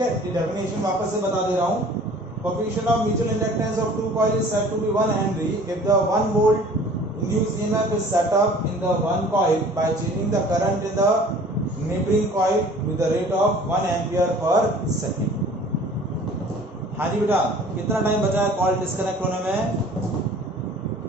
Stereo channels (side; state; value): both; normal; correlation 0.48